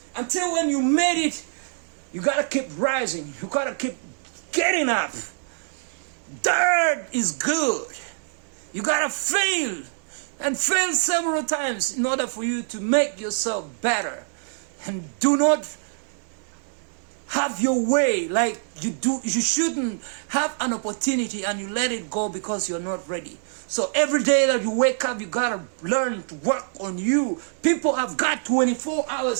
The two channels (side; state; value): left; silent; 62 dB below the other